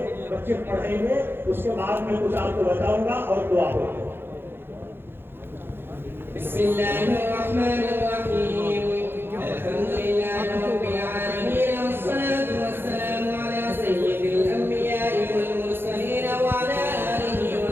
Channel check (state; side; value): late; left; 0.10 ms